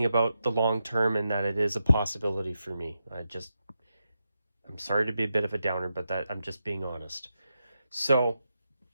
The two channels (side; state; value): both; inverted; correlation -0.87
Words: about the long term and that it is a possibility for me. I'm sorry to be a bit of a downer, but that I'm just being honest. So